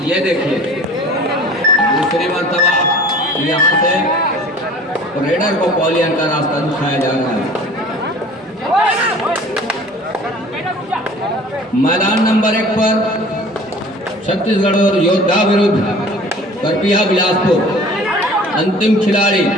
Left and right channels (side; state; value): both; normal; correlation 0.45